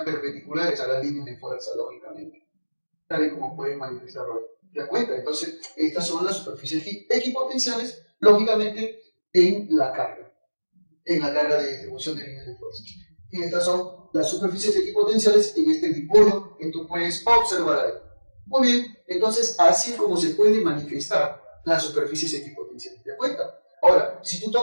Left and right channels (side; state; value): both; inverted; correlation -1.00